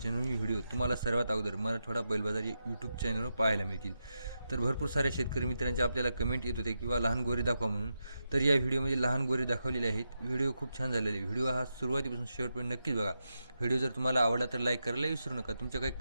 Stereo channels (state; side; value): inverted; both; correlation -0.87